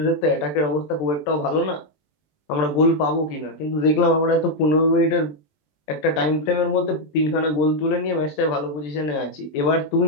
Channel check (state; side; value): late; right; 20 ms